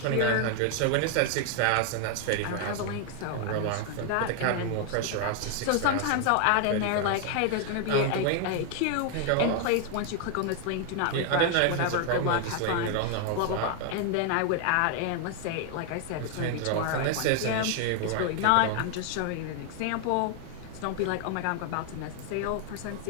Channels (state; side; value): different; both; correlation 0.00